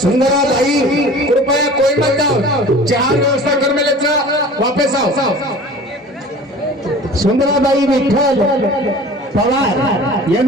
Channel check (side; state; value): both; normal; correlation 0.42